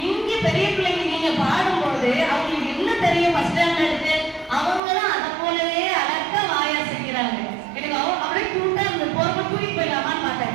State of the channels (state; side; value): drops out; left; at 4.8 s